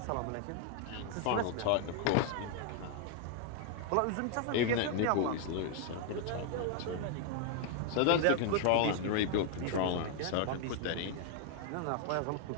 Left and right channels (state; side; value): different; both; correlation 0.00